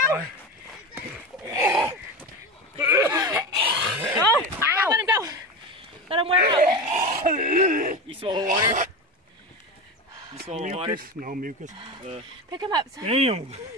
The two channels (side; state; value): both; normal; correlation 0.23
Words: 35. Oh, ow. Let him go. Let him wear out. You swallow water? You swallow water? Mucus? No mucus. Pick him up. Son. Damn!